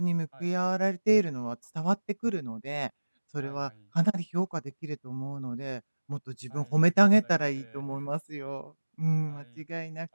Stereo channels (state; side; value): inverted; both; correlation -1.00